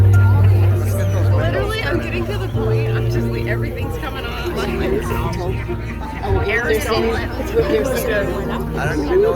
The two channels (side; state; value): both; identical; correlation 1.00